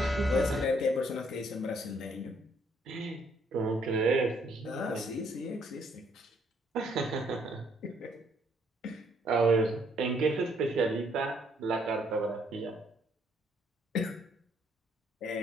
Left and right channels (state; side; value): normal; both; correlation 0.68